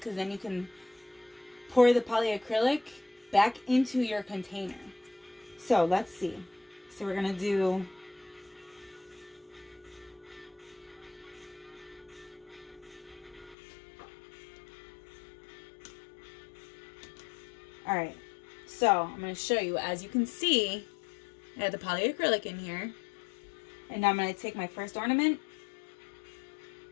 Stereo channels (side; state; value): right; drops out; at 13.6 s